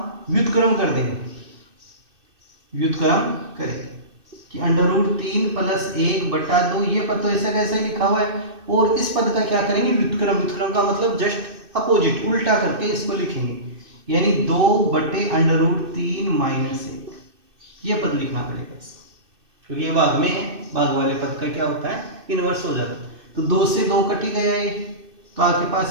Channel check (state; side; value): late; left; 2.6 ms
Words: व्युत्क्रम कर देंगे। व्युत्क्रम करेंगे कि √3 प्लस 1/2, ये पद तो ऐसे कैसे लिखा हुआ है, और इस पद का क्या करेंगे, व्युत्क्रम। व्युत्क्रम का मतलब जस्ट अपोजिट, उल्टा करके इसको लिखेंगे, यानी 2/√3 माइनस 1। ये पद लिखना पड़ेगा क्योंकि ये भाग में है, भाग वाले पद का क्या होता है, इनवर्स हो जाता है। तो 2 से 2 कट ही गया ये, तो आपके